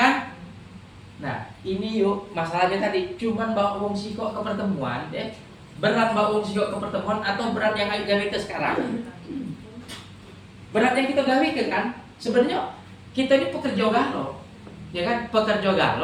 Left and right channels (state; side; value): identical; both; correlation 1.00